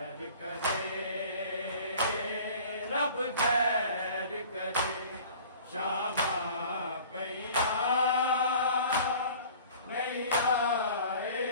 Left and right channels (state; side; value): inverted; both; correlation -0.46